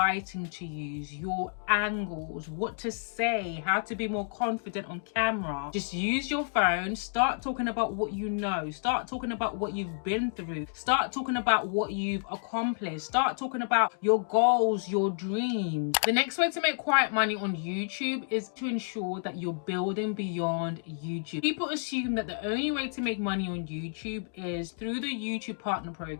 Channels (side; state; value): right; silent; digital silence